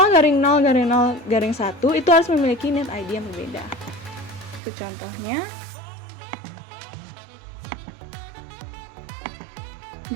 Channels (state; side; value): drops out; left; at 4.6 s